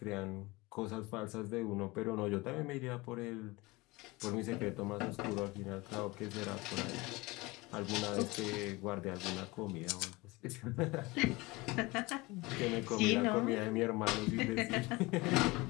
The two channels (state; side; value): quieter; right; 22.6 dB